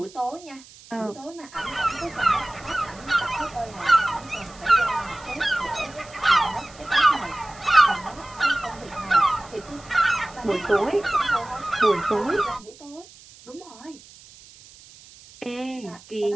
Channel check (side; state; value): right; noise; hiss, 22 dB below the sound